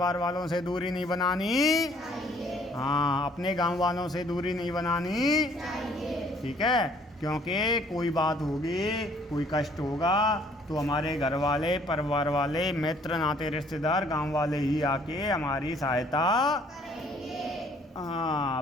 वालों से दूरी नहीं बनानी चाहिए, हाँ, अपने गांव वालों से दूरी नहीं बनानी चाहिए। ठीक है, क्योंकि कोई बात होगी, कोई कष्ट होगा तो हमारे घर वाले, परिवार वाले, मित्र, नाते रिश्तेदार, गांव वाले ही आके हमारी सहायता करेंगे।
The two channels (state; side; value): normal; both; correlation 0.60